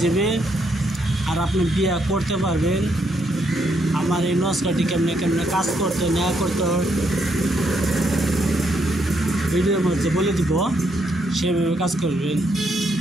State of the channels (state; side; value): normal; both; correlation 0.76